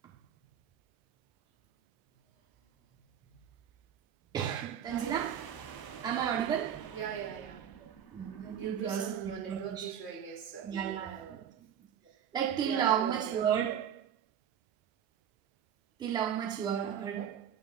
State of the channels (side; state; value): left; quieter; 9.0 dB